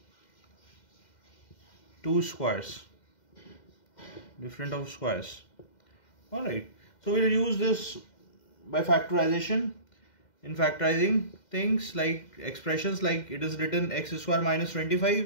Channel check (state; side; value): late; right; 2.1 ms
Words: two squares, different of squares. Alright, so we'll use this by factorization. In factorizing things like expressions, like it is written x square minus